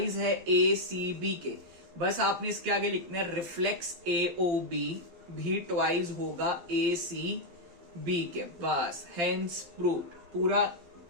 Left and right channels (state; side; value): late; left; 12 ms